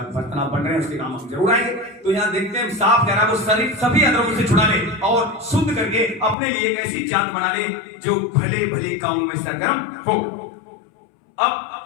बर्तन आप बन रहे हैं उसके काम जरूर आएंगे। तो यहाँ देखते हैं साफ कह रहा है, वो शरीर सभी अधर्मों से छुड़ा ले और शुद्ध करके अपने लिए एक ऐसी जात बना ले जो भले भले कामों में सरगर्म हो। अब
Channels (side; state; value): right; drops out; at 6.4 s